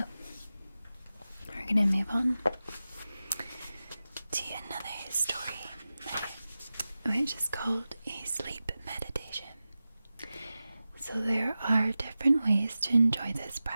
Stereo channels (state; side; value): inverted; both; correlation -0.95